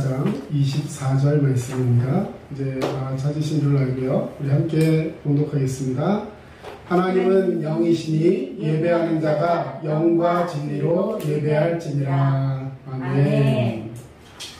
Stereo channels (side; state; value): both; identical; correlation 1.00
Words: 24절 말씀입니다. 이제 찾으신 줄 알고요. 우리 함께 봉독하겠습니다. 하나님은 영이시니 예배하는 자가 영과 진리로 예배할지니라. 아멘.